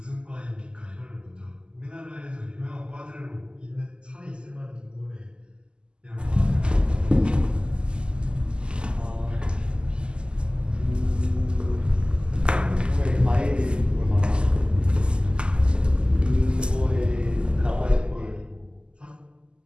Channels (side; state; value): left; late; 0.049 ms